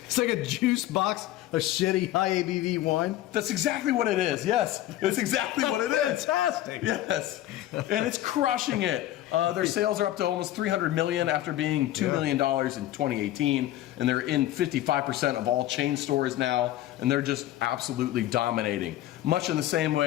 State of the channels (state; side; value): quieter; right; 14.0 dB